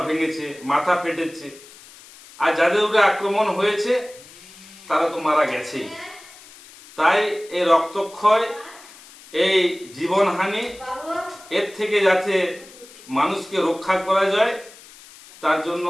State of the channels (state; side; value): noise; left; hiss, 21 dB below the sound